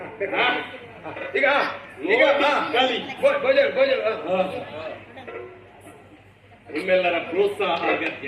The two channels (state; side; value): identical; both; correlation 1.00